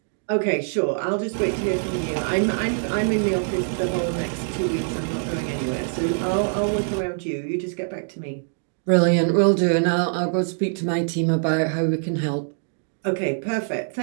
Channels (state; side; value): silent; left; digital silence